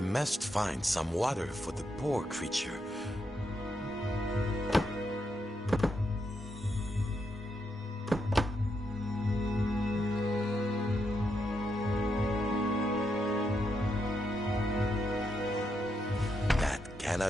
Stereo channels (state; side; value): normal; both; correlation 0.81